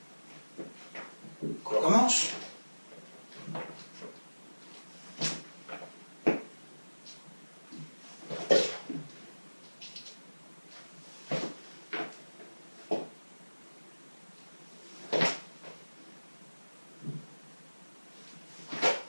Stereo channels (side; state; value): both; inverted; correlation -1.00